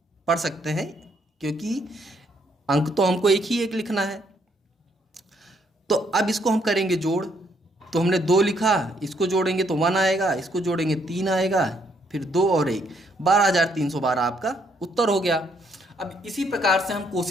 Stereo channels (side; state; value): both; normal; correlation 0.71